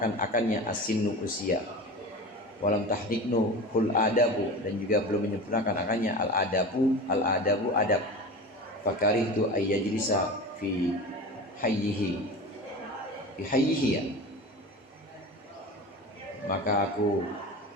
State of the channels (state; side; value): normal; both; correlation 0.31